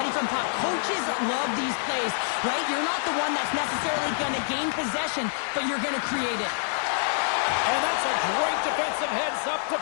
from puck. Coaches love these plays, right? You're not the one that's necessarily going to gain possession, but you're going to create it. And that's a great defensive heads-up to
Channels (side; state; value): right; silent; digital silence